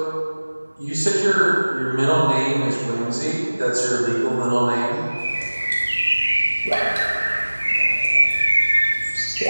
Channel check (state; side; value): inverted; both; correlation -1.00